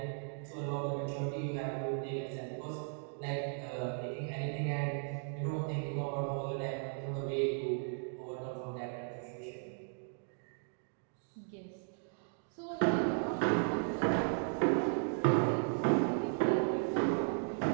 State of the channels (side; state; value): left; silent; 54 dB below the other